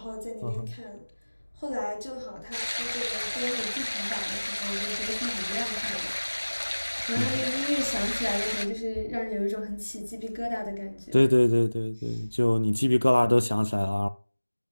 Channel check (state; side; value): inverted; both; correlation -1.00